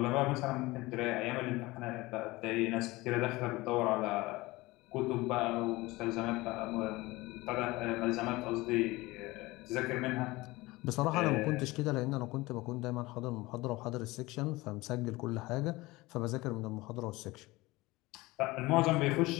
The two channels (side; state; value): right; quieter; 20.9 dB